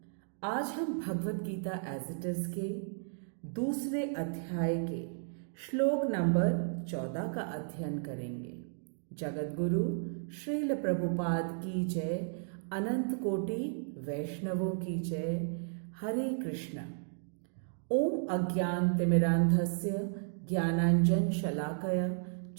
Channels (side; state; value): left; silent; digital silence